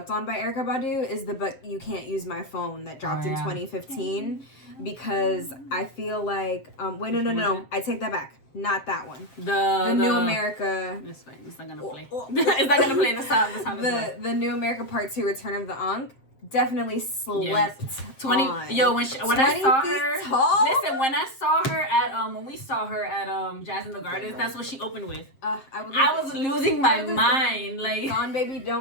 on by Erykah Badu is the "But You Can't Use My Phone" that dropped in 2015. Because I feel wait, no, I take that back. Not that one. The New America. It's fine. It's not gonna play. It's not gonna play the sound. The New America Part 2: Return of the Ankh. definitely slept 20 on. yo when I 20 saw feet her tall? listen when I saw her at when we saw her at Jazz in the Gardens, that's what she opened with. I was losing my mind. Like Gone Baby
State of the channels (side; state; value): right; late; 7.5 ms